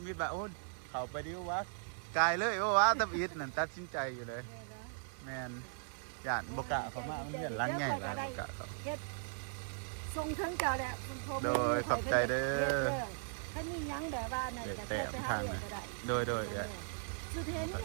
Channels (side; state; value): left; silent; 52 dB below the other